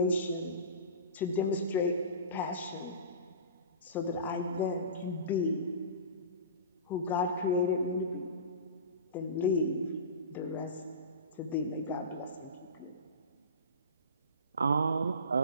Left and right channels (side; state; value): both; inverted; correlation -0.32